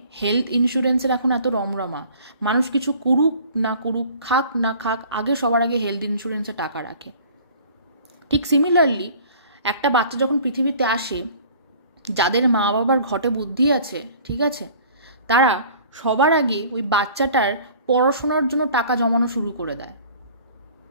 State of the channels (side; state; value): both; inverted; correlation -0.49